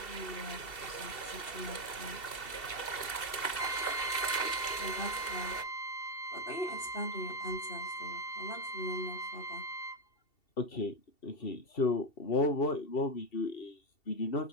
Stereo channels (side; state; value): right; late; 2.7 ms